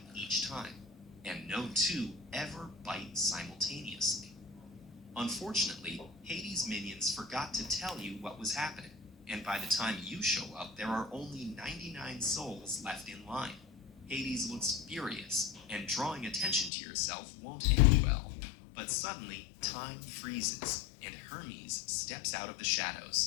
each time, and no two ever bite simultaneously. Unfortunately, Hades' minions forgot to tell you what was happening, and by the time you show up, there are only 99 souls left in line. Hades looks furious, and drawing attention to yourself won't end well. But suddenly, time freezes, and Hermes steps out of the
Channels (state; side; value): drops out; right; at 16.7 s